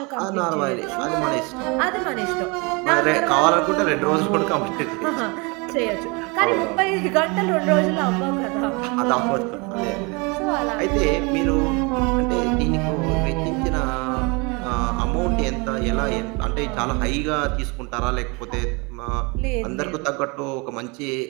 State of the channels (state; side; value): quieter; left; 29.3 dB